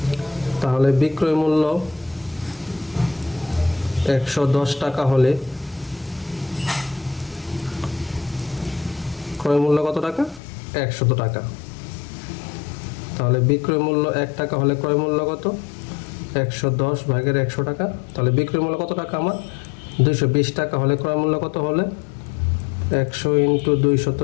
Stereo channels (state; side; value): drops out; right; at 10.4 s